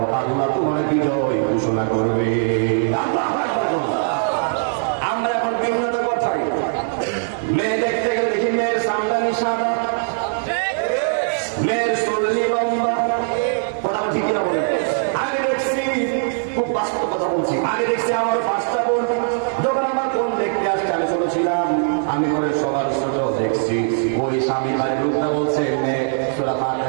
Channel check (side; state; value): left; silent; 63 dB below the other